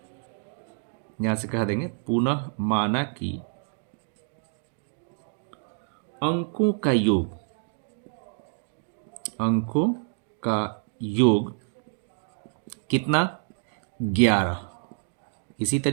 यहां से कह देंगे पुनः माना कि अंकों का योग, अंकों का योग कितना, 11। इसी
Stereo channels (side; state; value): left; silent; 60 dB below the other